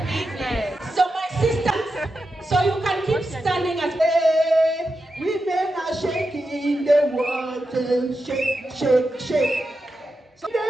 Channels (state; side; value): normal; both; correlation 0.89